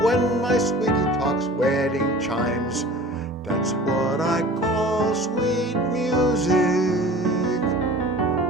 when my sweetie talks wedding chimes, that's what I call sweet music.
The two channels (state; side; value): normal; both; correlation 0.42